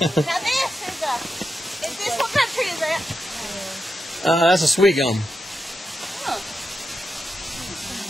this what country is that? That's a sweet gum.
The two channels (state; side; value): normal; both; correlation 0.87